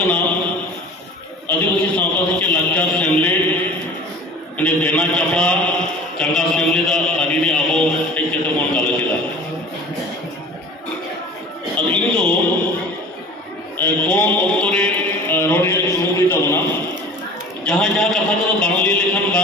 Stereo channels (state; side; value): normal; both; correlation 0.40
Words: आदिवासी सावता से लाचार सेमलेद ने देना चपड़ा चंगा सेमलेद आदि ने आबो एक जैसे मन गालो चिदा अब इन तो कौन ऑक्टोरे रोडे सुमुदी तबना जहाँ जहाँ कथा तो बांगली लेखन